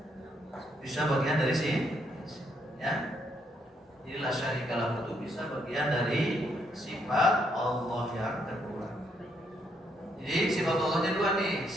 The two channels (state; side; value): normal; both; correlation 0.74